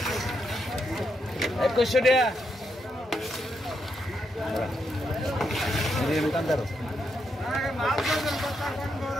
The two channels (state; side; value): normal; both; correlation 0.81